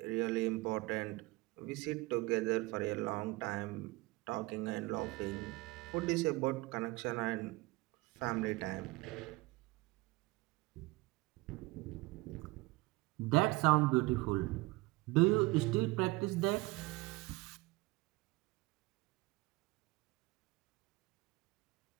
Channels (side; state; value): left; quieter; 22.3 dB